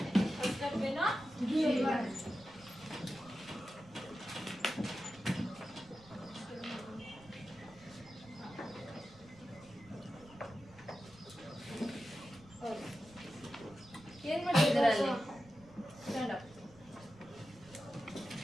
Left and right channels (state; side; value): noise; right; rumble, 22 dB below the sound